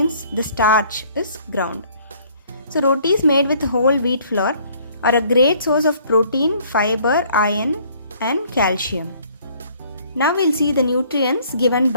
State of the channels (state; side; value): inverted; both; correlation -0.59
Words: the starch, is ground. So rotis made with whole wheat flour are a great source of protein, fiber, iron and calcium. Now we'll see the nutrients given